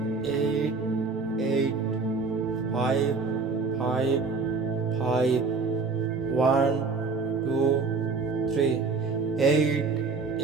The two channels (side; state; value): left; quieter; 4.5 dB